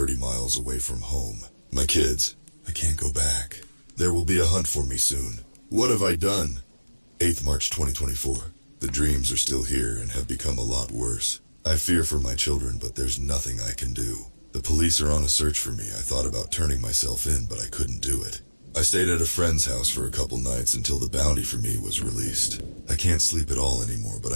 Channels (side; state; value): both; inverted; correlation -1.00